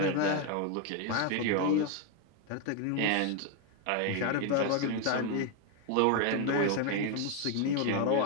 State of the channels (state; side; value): different; both; correlation 0.01